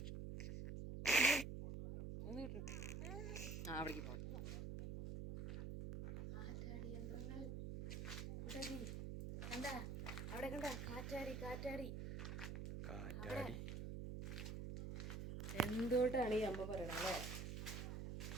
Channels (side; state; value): right; noise; hum, 4 dB below the sound